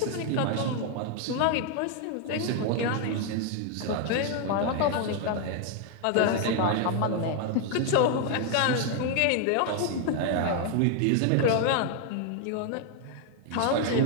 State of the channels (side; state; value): both; different; correlation 0.00